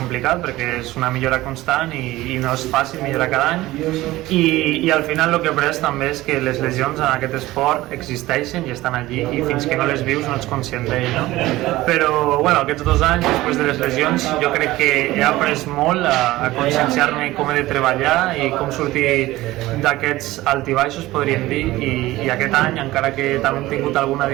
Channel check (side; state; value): left; quieter; 17.5 dB